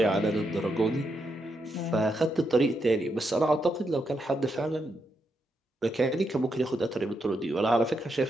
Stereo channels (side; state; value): both; normal; correlation 0.82